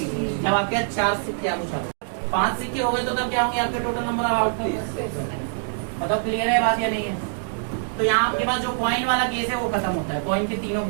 जब आपके 4 सिक्के आप पूछा 5 सिक्के हो गए तो तब क्या होंगे आपके टोटल नंबर ऑफ आउटकम। बताओ क्लियर है बात या नहीं है। तो यहाँ आपके पास जो कॉइन वाला केस है वो खत्म होता है। कॉइन के तीनों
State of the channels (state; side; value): silent; left; digital silence